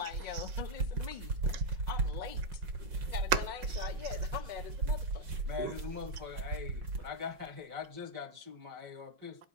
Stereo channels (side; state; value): left; late; 5.4 ms